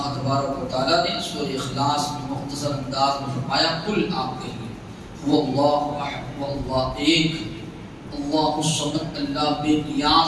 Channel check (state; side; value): identical; both; correlation 1.00